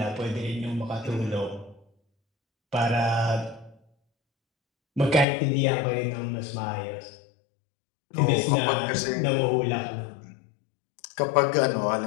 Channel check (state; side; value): drops out; right; at 5.2 s